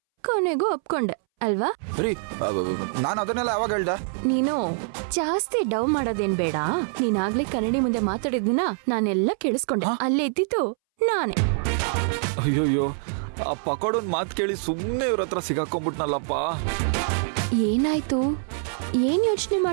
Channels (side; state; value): left; silent; 62 dB below the other